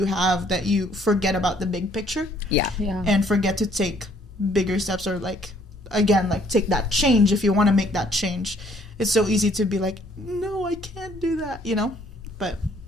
have that you forget about the big picture. Yeah. And forget to take bigger steps or like, again, like take that change if you want to make that change. It's so easy to be like, no, I can't do that, you know? But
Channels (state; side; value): normal; both; correlation 0.62